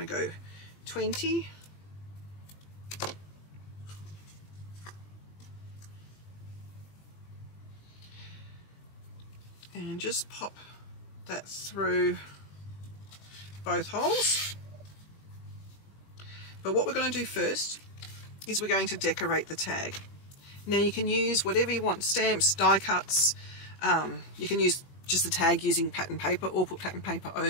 to go 20. And just pop that through both holes. But what we're going to do first is we're going to decorate the tag. Now you can use whatever you want, stamps, die cuts, you can use just the tag using pattern paper or put pattern paper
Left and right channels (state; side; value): late; right; 20 ms